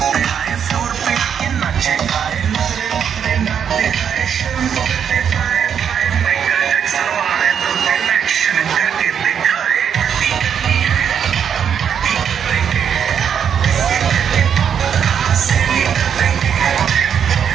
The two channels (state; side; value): quieter; left; 8.0 dB